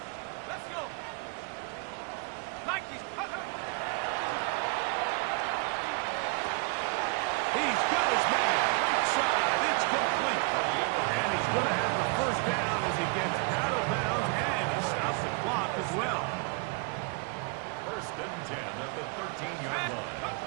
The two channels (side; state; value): left; quieter; 33.9 dB